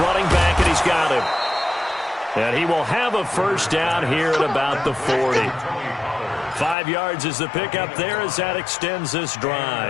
back, and he's got him. And he will have a first down here at about the 40. 5 yards is the pickup there as that extends this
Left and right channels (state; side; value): drops out; right; at 6.8 s